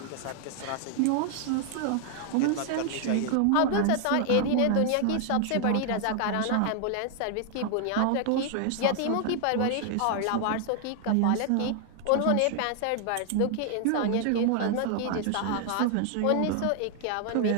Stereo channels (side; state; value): both; different; correlation 0.00